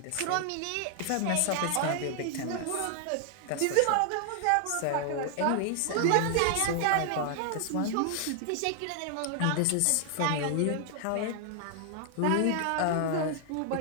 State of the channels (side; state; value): both; different; correlation 0.00